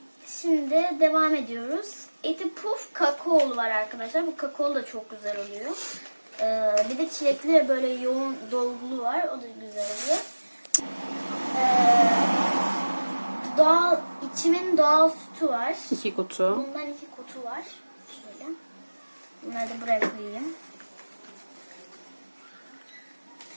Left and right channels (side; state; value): both; inverted; correlation -1.00